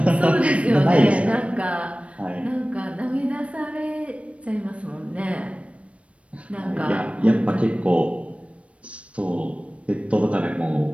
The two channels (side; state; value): left; late; 0.062 ms